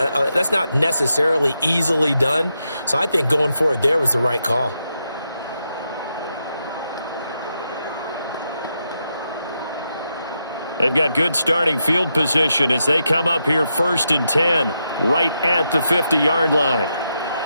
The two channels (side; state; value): both; inverted; correlation -0.84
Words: necessarily easily done, so I think going for it there was the right call. They've got good starting field position as they come up here 1st and 10, right at the 50-yard line.